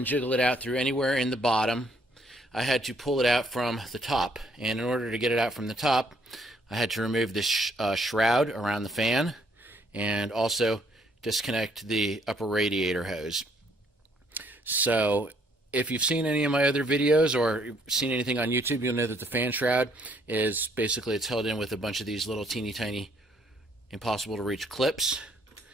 jiggle it out through anywhere in the bottom. I had to pull it out from the top, and in order to get it out from the top, I had to remove this shroud around the fan and also disconnect the upper radiator hose. So if you've seen any of my other videos or seen anything on YouTube, you'll know that the fan shroud is basically, it's held in with a bunch of these little teeny tiny impossible to reach clips.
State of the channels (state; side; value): normal; both; correlation 0.67